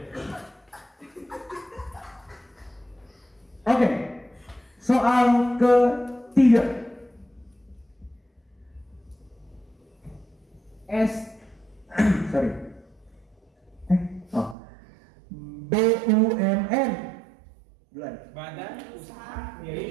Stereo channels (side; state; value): left; drops out; at 14.6 s